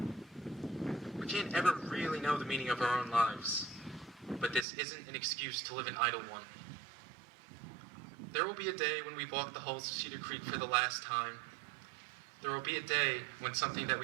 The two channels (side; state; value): left; drops out; at 4.7 s